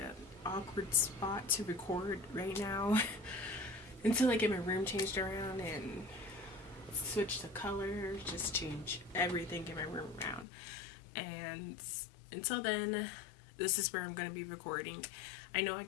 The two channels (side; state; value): right; drops out; at 10.5 s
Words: awkward spot to record right now until I get my room changed around and switch the color, just change everything in my room around. And until then, this is where I'm going to be recording. I know I